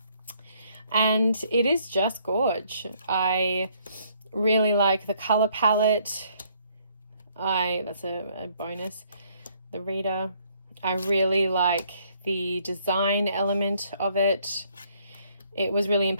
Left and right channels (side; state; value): both; inverted; correlation -0.66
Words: And it is just gorge. I really like the color palette. That's a bonus. The reader. I really like the design element of it. It was really